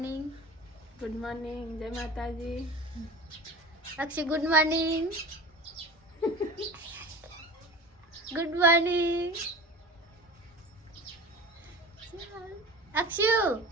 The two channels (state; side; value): normal; both; correlation 0.34